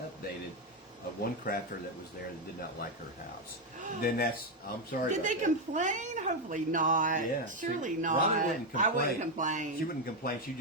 One crafter that was there that did not like her house. Then I'm sorry. Did they complain? Hopefully not. Yeah, Surely not. Robin wouldn't complain. I wouldn't complain. She wouldn't complain. She'd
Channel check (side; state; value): both; normal; correlation 0.06